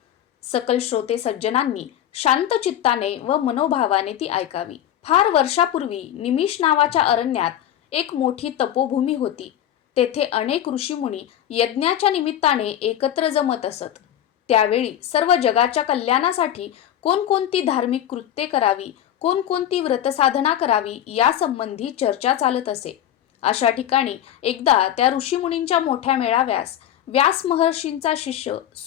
सकल श्रोते सज्जनांनी शांत चित्ताने व मनोभावाने ती ऐकावी. फार वर्षापूर्वी निमिष नावाच्या अरण्यात एक मोठी तपोभूमी होती. तेथे अनेक ऋषीमुनी यज्ञाच्या निमित्ताने एकत्र जमत असत. त्यावेळी सर्व जगाच्या कल्याणासाठी कोणकोणती धार्मिक कृत्ये करावी, कोणकोणती व्रतसाधना करावी यासंबंधी चर्चा चालत असे. अशा ठिकाणी एकदा त्या ऋषीमुनींच्या मोठ्या मेळाव्यास व्यास महर्षींचा शिष्य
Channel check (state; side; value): quieter; right; 11.0 dB